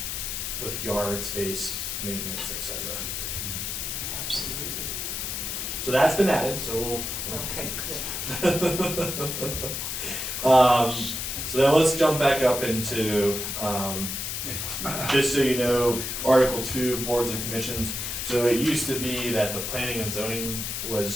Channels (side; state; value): left; noise; hiss, 3 dB below the sound